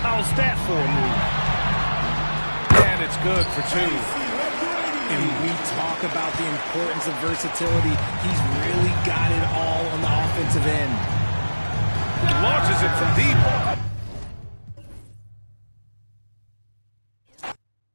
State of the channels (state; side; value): inverted; both; correlation -1.00